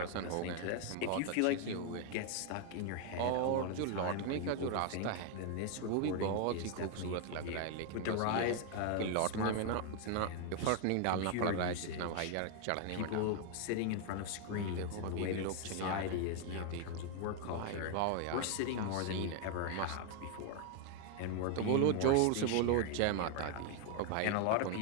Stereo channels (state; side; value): different; both; correlation 0.01